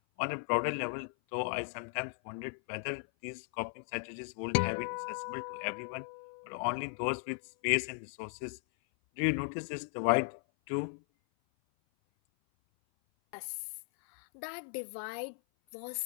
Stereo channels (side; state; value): right; silent; 53 dB below the other